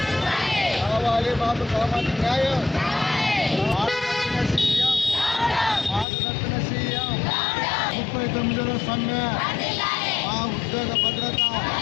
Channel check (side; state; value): right; drops out; at 6.1 s